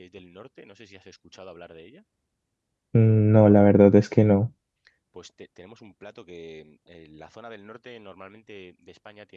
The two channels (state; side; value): identical; both; correlation 1.00